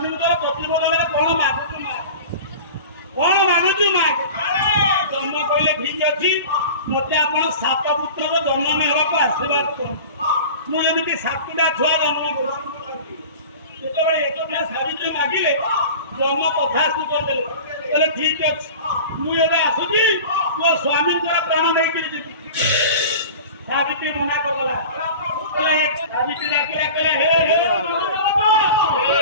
ପ୍ରତିବଦଳରେ କଣ ମାଗୁଛୁ ଜନ୍ମ କହିଲେ ଠିକ ଅଛି ମତେ ଆପଣ 7 ପୁତ୍ରର ଜନ୍ମ ହେବାକୁ ଆଶୀର୍ବାଦ କରନ୍ତୁ ମୁଁ ଏମିତି 7ଟା ଛୁଆ ଜନ୍ମ କରୁଛି ଯେତେବେଳେ ଏକଥା ସାବିତ୍ରୀ ମାଗିଲେ ବ୍ରହ୍ମ କଥାକୁ କରିଦେଲେ କହିଲେ ଠିକ ଅଛି ମୁଁ ଏବେ ଆସୁଛି ମୋ ସ୍ୱାମୀଙ୍କର ପ୍ରାଣ ନେଇକିରି ଯିବି ସାବିତ୍ରୀ ମନା କରିଦେଲା ସାବିତ୍ରୀ ଡାକିଲା କହିଲେ ହେ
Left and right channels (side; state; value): both; inverted; correlation -0.37